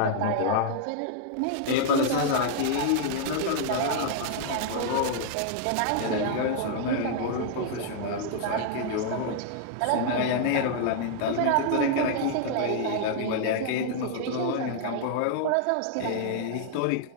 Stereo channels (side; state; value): both; different; correlation -0.01